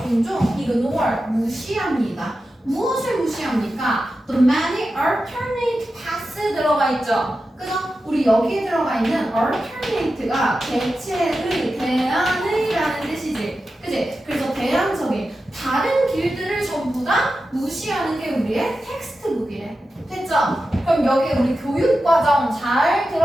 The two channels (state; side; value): normal; both; correlation 0.92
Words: 종종 ignore 무시합니다. 무엇을 무시합니까? The many alternate paths 들어가 있죠. 그죠? 우리 여기에 들어가 있는 alternate가 대체의, 대안의라는 뜻이지. 그지? 그래서 대안적인 다른 길들을 전부 다 무시하는 게 우리의 텍스트북이래. 됐죠? 그럼 여기 우리 교육과정 잘